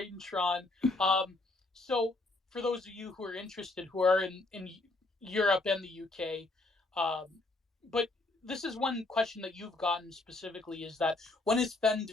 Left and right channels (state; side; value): quieter; right; 3.1 dB